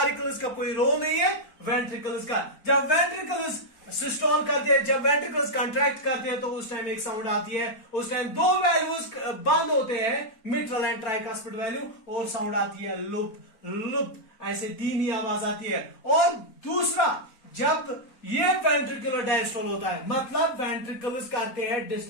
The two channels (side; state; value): right; late; 4.4 ms